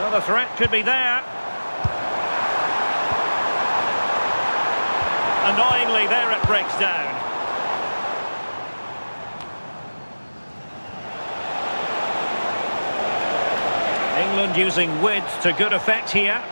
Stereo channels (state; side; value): inverted; both; correlation -1.00